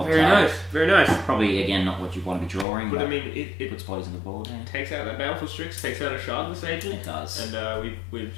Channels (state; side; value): drops out; right; at 2.7 s